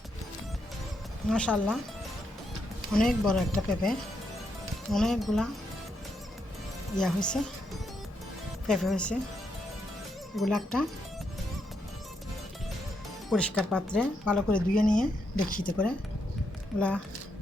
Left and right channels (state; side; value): normal; both; correlation 0.79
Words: মাশাআল্লাহ, অনেক বড় একটা পেঁপে, অনেকগুলা হয়েছে, পেঁপে হয়েছে। এগুলো একটা পরিষ্কার পাত্রে ভালো করে ধুয়ে নিয়ে ডেকচিতে করে এগুলা